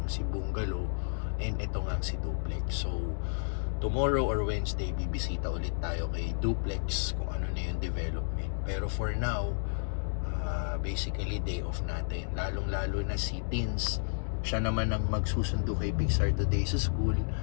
si Bungalow and ito nga si Duplex. So, tomorrow or Wednesday, bibisita ulit tayo kay Duplex kung ano na yung development. Pero for now, basically day off natin. Lalong-lalo na si Tins, siya naman ang magsusundo kay Pixar today sa school.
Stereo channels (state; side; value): silent; right; digital silence